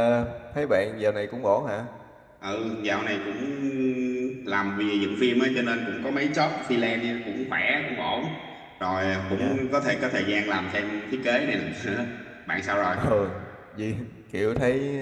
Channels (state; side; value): identical; both; correlation 1.00